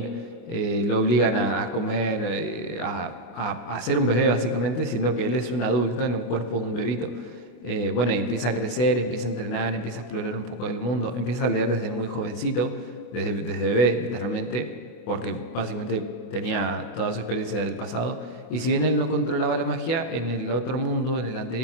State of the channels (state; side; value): late; right; 25 ms